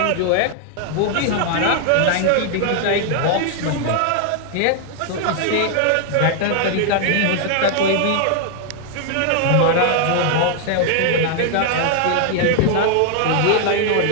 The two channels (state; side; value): different; both; correlation 0.00